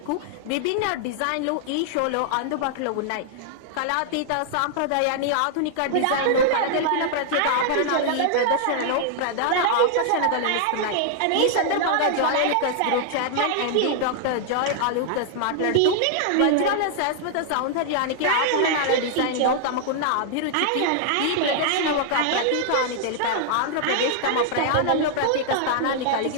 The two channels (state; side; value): different; both; correlation -0.01